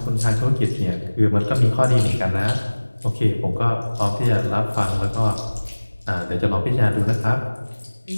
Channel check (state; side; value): inverted; both; correlation -1.00